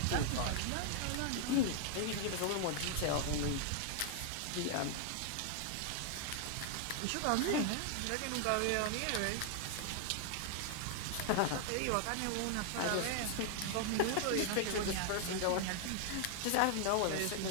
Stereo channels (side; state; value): both; different; correlation 0.00